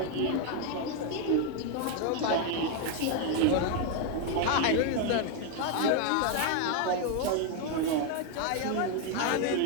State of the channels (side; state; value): both; different; correlation 0.01